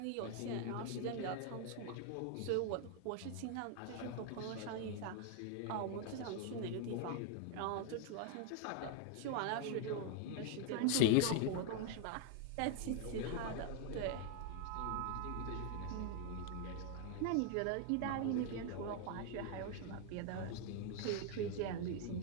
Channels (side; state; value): both; different; correlation 0.00